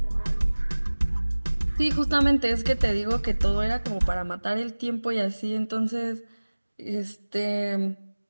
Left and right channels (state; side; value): inverted; both; correlation -1.00